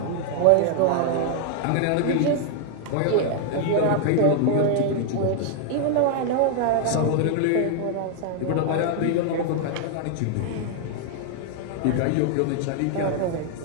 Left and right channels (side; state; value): both; different; correlation 0.00